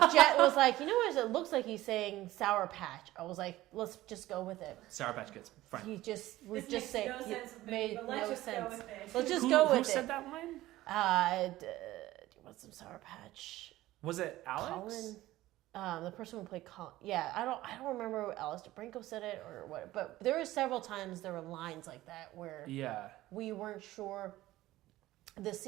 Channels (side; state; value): left; quieter; 16.3 dB